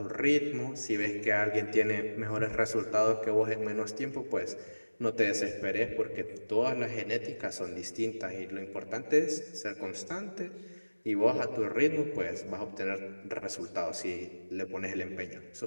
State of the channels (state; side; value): inverted; both; correlation -1.00